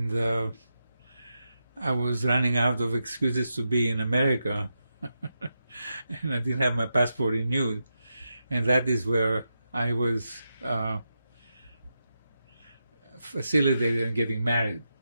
I was running out of excuses to be in America, and I didn't have my passport renewed, and that is where I was facilitated in getting married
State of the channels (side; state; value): both; inverted; correlation -0.87